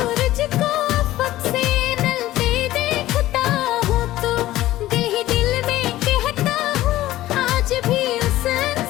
को अफक से नलते देखता हूँ तो दिल में कहता हूँ आज भी उस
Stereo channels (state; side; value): quieter; right; 15.4 dB